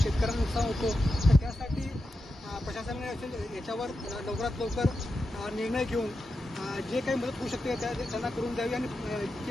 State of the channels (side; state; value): both; normal; correlation 0.89